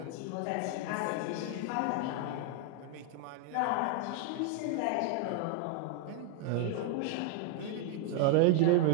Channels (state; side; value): different; both; correlation 0.00